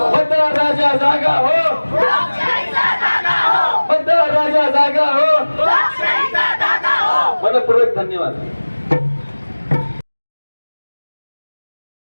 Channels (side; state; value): both; inverted; correlation -1.00